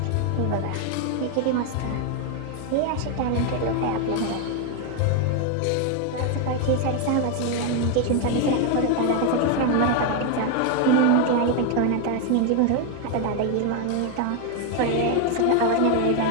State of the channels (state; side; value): different; both; correlation 0.01